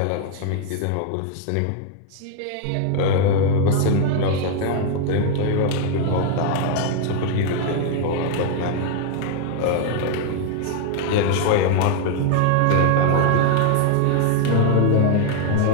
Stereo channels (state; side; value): different; both; correlation 0.00